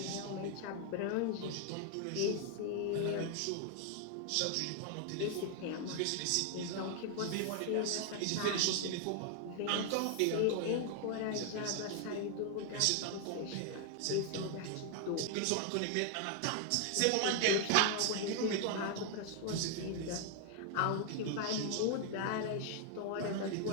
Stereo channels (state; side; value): different; both; correlation 0.00